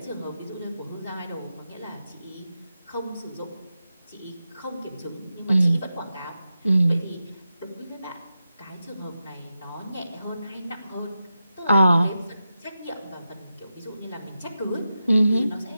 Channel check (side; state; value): both; inverted; correlation -0.90